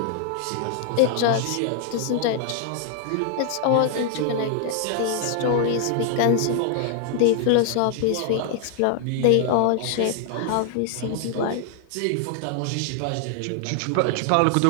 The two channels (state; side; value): different; both; correlation 0.00